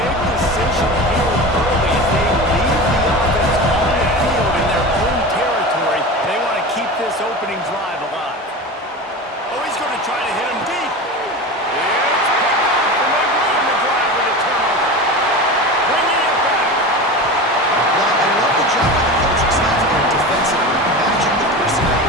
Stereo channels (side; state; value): both; normal; correlation 0.29